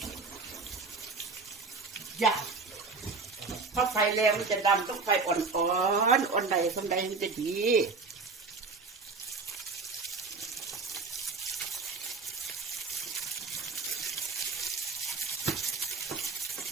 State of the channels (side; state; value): left; quieter; 4.3 dB